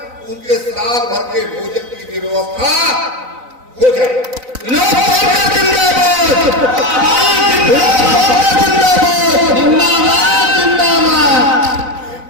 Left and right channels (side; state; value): left; late; 4.0 ms